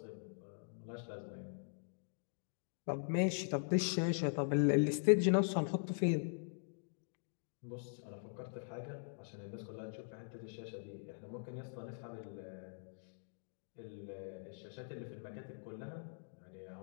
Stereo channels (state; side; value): silent; right; digital silence